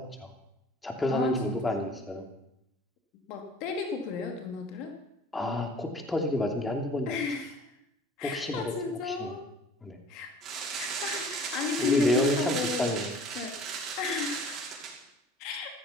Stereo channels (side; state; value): both; normal; correlation 0.49